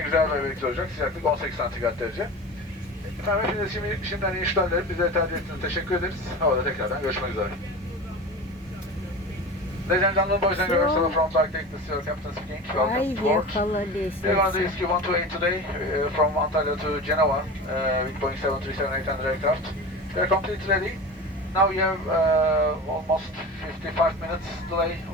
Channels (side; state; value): both; normal; correlation 0.31